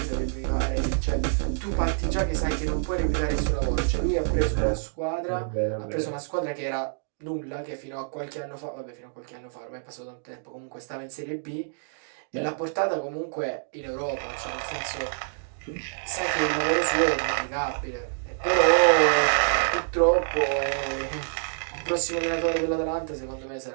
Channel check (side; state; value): left; silent; digital silence